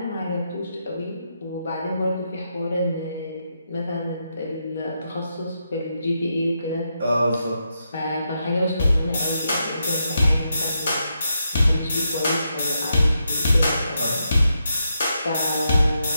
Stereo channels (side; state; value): both; inverted; correlation -0.83